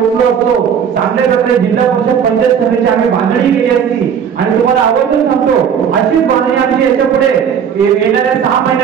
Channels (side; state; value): left; quieter; 7.7 dB